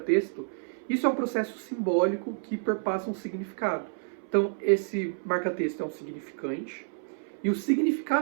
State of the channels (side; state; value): left; silent; 58 dB below the other